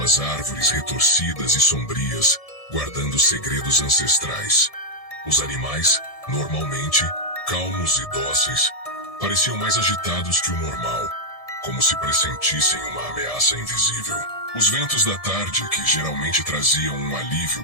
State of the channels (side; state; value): right; late; 1.7 ms